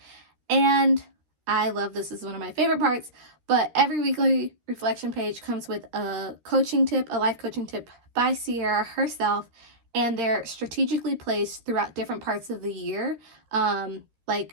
And I love this, is one of my favorite parts, but every weekly reflection page comes with a coaching tip, a life coaching tip by Sierra herself, and they're strategically placed throughout different parts of the year. A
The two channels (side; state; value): left; late; 13 ms